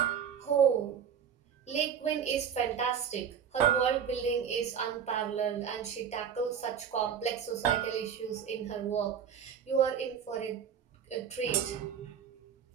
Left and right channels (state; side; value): quieter; left; 7.9 dB